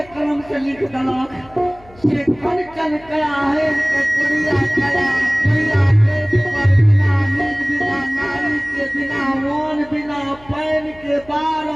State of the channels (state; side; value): noise; left; hum, 24 dB below the sound